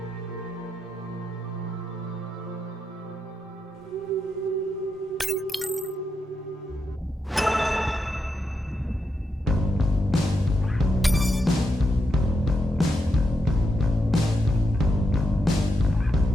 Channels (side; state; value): both; normal; correlation 0.84